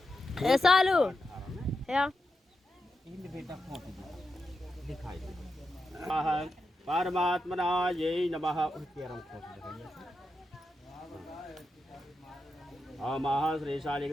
ऐसा लो या इन बेटा खोल दिखाई परमात्मना ये नमः केरम खोल दे ओमः श्री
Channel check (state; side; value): normal; both; correlation 0.87